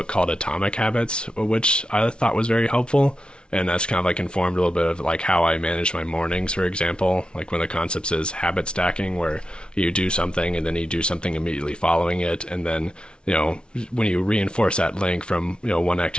called Atomic Habits, which I thought was very helpful. And that's kind of like informed a little bit of like how I manage my mornings, for example. Like one of the concepts is habit stacking, where you do something and then you do something immediately following it. And then, when you reinforce that link from, one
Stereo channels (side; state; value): right; late; 0.056 ms